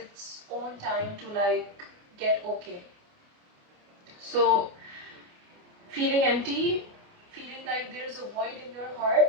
own time to like get okay. So feeling empty, feeling like there's a void in your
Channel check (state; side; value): late; left; 28 ms